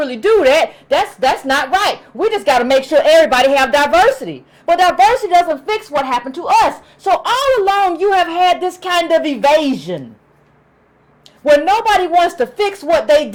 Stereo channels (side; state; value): both; identical; correlation 1.00